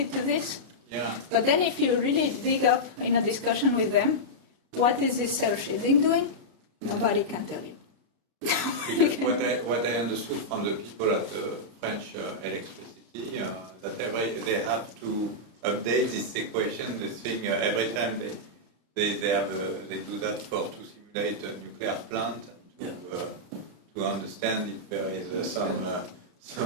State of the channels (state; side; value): late; left; 33 ms